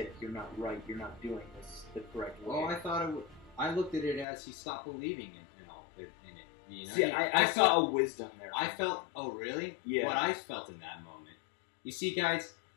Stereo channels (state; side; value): drops out; right; at 4.2 s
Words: you're not right, you're not doing this the correct way. Well, I looked at it as he stopped believing in it. You know? See, I saw a wisdom there. I felt, oh really? Yeah. What I felt in that moment. You see, guys,